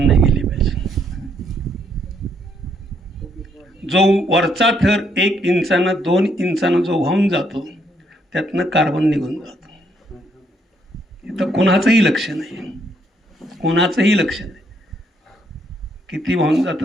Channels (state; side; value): normal; both; correlation 0.72